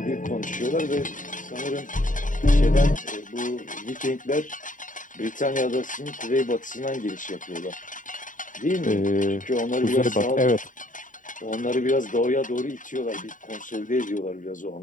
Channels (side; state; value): right; late; 0.38 ms